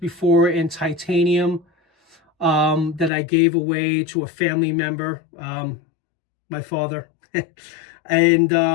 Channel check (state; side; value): drops out; right; at 3.1 s